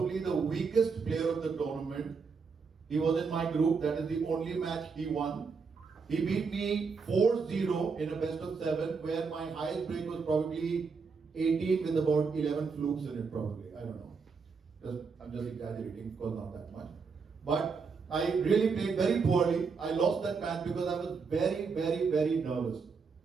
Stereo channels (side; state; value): left; quieter; 5.2 dB